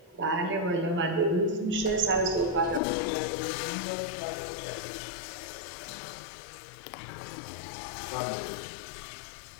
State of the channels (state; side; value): drops out; right; at 2.8 s